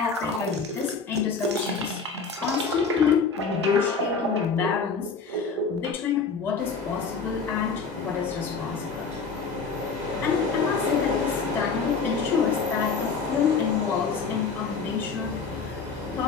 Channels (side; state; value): right; quieter; 5.0 dB